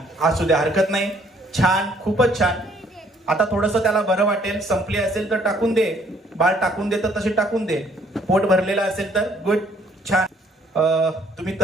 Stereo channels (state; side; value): normal; both; correlation 0.63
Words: असू दे. हरकत नाही. छान. खूपच छान. आता थोडस त्याला बरं वाटेल. संपली असेल तर टाकून दे. बाळ टाकून दे तर तशी टाकून दे. पोट भरलेलं असेल तर. गुड. छान. तुम्ही